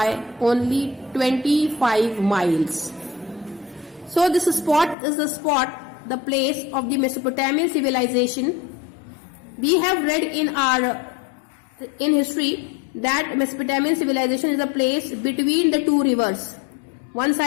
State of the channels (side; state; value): right; drops out; at 5.0 s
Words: only 25 miles. So this spot is the place of the Mesopotamian civilization. We have read in history that Mesopotamian civilization is a place between the two rivers. One